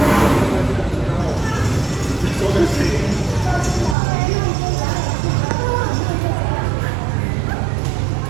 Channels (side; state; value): left; drops out; at 4.0 s